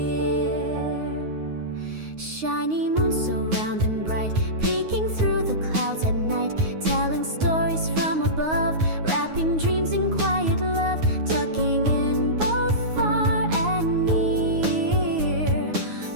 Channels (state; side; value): late; left; 9.5 ms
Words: Shiny moon so round and bright, peeking through the clouds at night, telling stories from above, wrapping dreams in quiet love, tucking in both far and near.